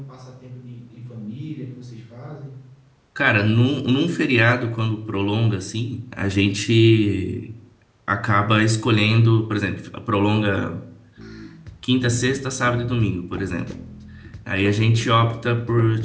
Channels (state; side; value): identical; both; correlation 1.00